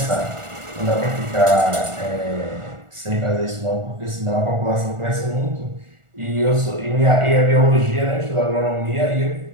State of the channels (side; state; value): left; late; 1.4 ms